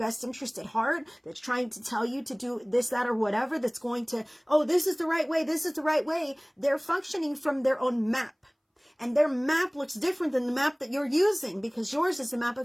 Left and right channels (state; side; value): identical; both; correlation 1.00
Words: interest at heart, that's trying to tell you to do this, that, or whatever, that's going to, oh, this is the right way, this is the right way. They're functioning from their own map. And their map looks different than the map that you're using, because yours is the map